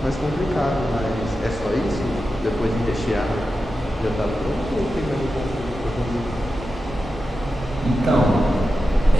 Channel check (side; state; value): both; normal; correlation 0.91